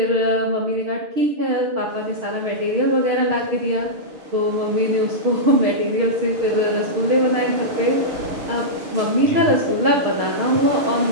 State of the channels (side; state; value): left; late; 6.5 ms